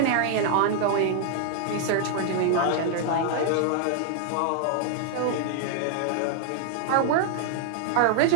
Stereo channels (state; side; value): different; both; correlation 0.00